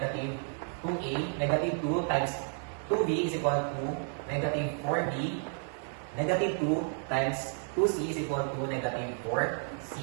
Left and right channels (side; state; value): left; silent; 56 dB below the other